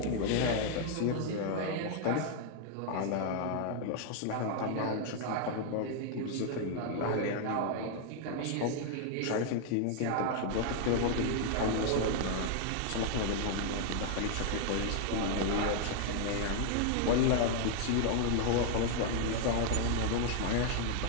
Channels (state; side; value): different; both; correlation 0.00